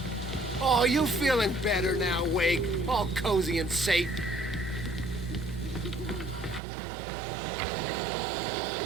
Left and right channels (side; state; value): left; drops out; at 6.6 s